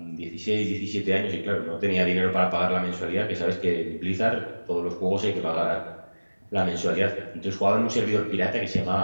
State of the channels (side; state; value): both; inverted; correlation -1.00